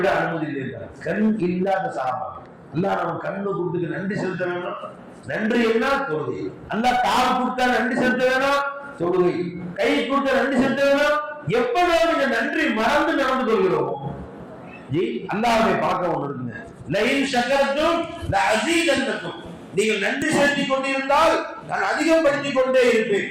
அனுமதி இல்லை. கண் இல்லாத சாபா. அல்லாஹ் நம்ம கண்ணு கொடுத்துக்கு நன்றி செலுத்த வேணும். நன்றி என்ன? தொழுகை. அல்லாஹ் கால் கொடுத்தா நன்றி செலுத்த வேணும், தொழுகை. கை கொடுத்தா நன்றி செலுத்த வேணும். எப்போதும் இந்த நன்றி மறந்து நடந்து கொள்கிறோம். அல்லாஹ்வை பார்க்க ஒன்று இருக்குங்க, லயின் ஷக்கரத்தும் லஅஸீதன்னக்கும். நீங்கள் நன்றி செலுத்திக் கொண்டிருந்தால் நான் அதிகப்படுத்திக் கொண்டே இருப்பேன்.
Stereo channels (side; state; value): both; identical; correlation 1.00